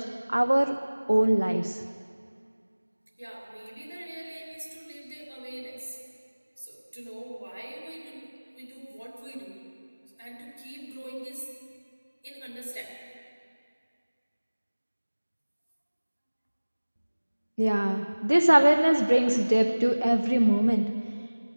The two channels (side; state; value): both; inverted; correlation -1.00